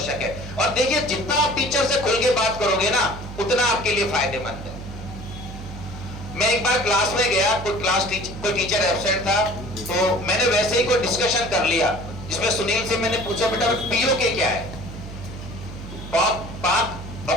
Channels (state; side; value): noise; right; hum, 11 dB below the sound